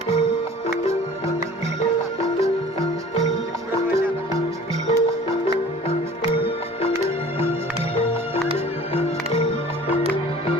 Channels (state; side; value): normal; both; correlation 0.46